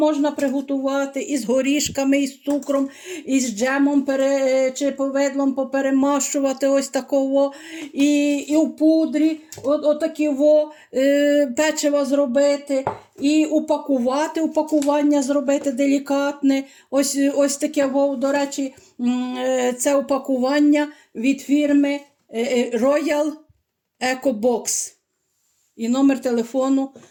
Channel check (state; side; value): identical; both; correlation 1.00